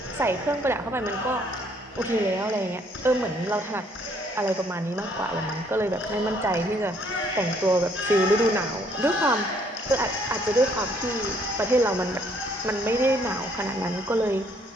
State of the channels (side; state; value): both; normal; correlation 0.65